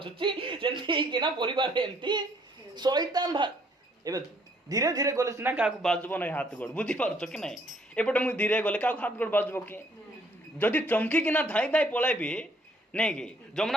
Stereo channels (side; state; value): both; normal; correlation 0.64